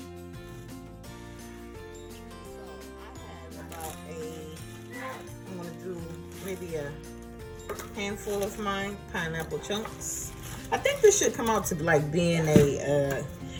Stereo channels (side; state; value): both; identical; correlation 1.00